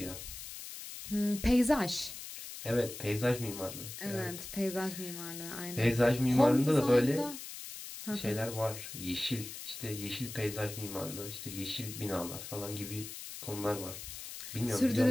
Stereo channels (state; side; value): noise; left; hiss, 10 dB below the sound